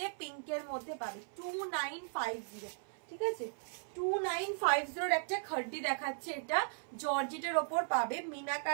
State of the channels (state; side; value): silent; left; 53 dB below the other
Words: পিঙ্কের মধ্যে পাবে 2950, ঠিক আছে। 2950 একটা খাড্ডি দেখাচ্ছে, এটা জর্জেটের ওপর পাবে,